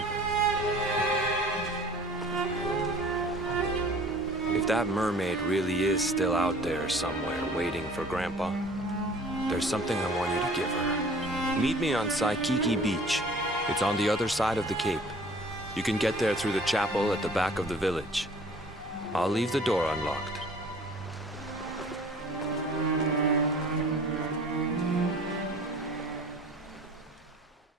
If that mermaid really is still out there somewhere waiting for Grandpa, there's something I want you to give her. Meet me on Saikiki Beach. It's on the other side of the cape. You can get there through the chapel at the back of the village. I'll leave the door unlocked.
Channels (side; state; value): both; normal; correlation 0.49